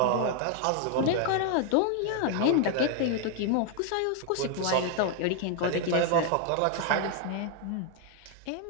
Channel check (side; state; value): both; different; correlation 0.00